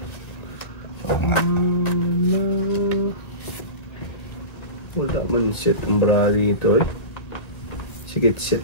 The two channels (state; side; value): late; right; 1.9 ms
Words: Wala man set ang brady ito eh. Sige, set